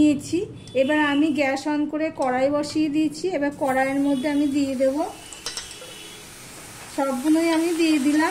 এবার আমি গ্যাস অন করে কড়াই বসিয়ে দিয়েছি। এবার কড়াইয়ের মধ্যে আমি দিয়ে দেব, সবগুলোই আমি দিয়ে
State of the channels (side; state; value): both; identical; correlation 1.00